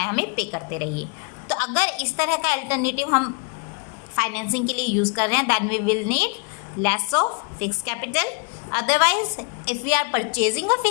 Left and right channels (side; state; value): right; quieter; 37.0 dB